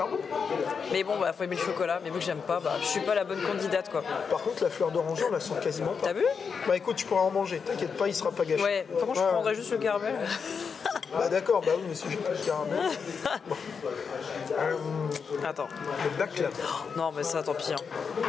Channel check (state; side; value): quieter; right; 5.9 dB